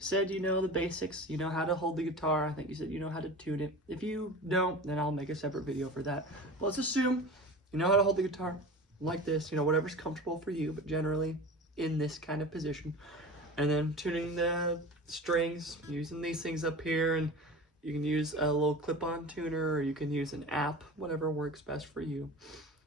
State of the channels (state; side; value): normal; both; correlation 0.34